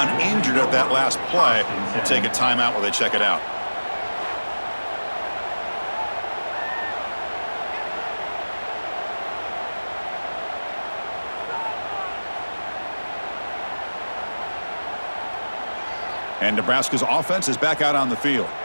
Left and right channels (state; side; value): inverted; both; correlation -1.00